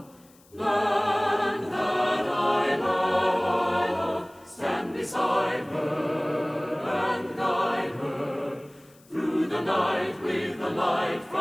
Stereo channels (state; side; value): noise; left; hiss, 29 dB below the sound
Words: land that I love. Stand beside her and guide her through the night with the light